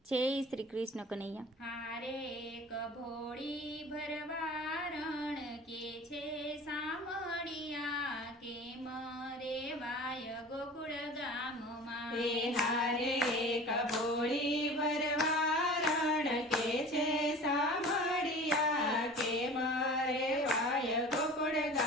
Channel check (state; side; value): normal; both; correlation 0.40